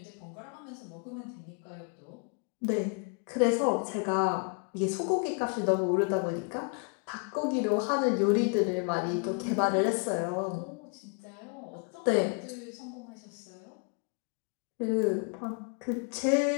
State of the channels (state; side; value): quieter; right; 36.5 dB